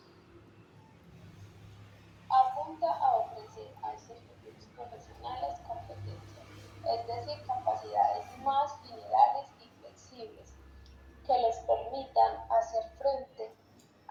Apunta a ofrecer a estos futuros profesionales competencias, es decir, capacidades más generales y flexibles, que les permitan hacer frente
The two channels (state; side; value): identical; both; correlation 1.00